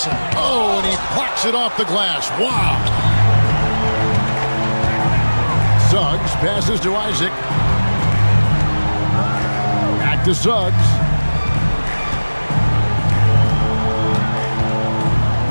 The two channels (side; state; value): both; inverted; correlation -1.00